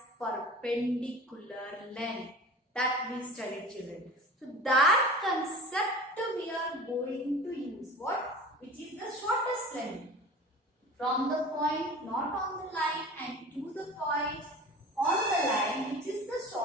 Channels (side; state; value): both; normal; correlation 0.38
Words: perpendicular length. That we studied, children. So that concept we are going to use. What? which is the shortest length. From the point not on the line and to the point on the line, which is the